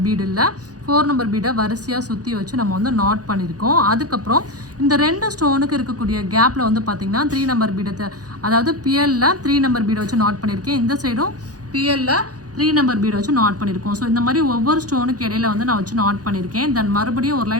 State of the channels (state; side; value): late; left; 0.68 ms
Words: பீடு இல்லை 4 நம்பர் பீடை வரிசையாக சுற்றி வச்சு நம்ம வந்து நாட் பண்ணியிருக்கோம். அதுக்கப்புறம் இந்த 2 ஸ்டோனுக்கு இருக்கக்கூடிய கேப்பில் வந்து பார்த்திங்கன்னா 3 நம்பர் பீடத்தை அதாவது பிஎல்ல 3 நம்பர் பீடை வச்சு நாட் பண்ணியிருக்கேன். இந்த சைடும் பிஎல்ல 3 நம்பர் பீட் வச்சு நாட் பண்ணியிருக்கோம். ஸோ இந்த மாதிரி ஒவ்வொரு ஸ்டோனுக்கு இடையில வந்து நான் வச்சு நாட் பண்ணியிருக்கேன். தென் மறுபடியும் ஒரு